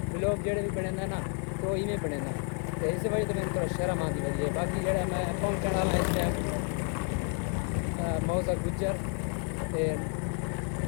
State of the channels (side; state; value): right; quieter; 38.6 dB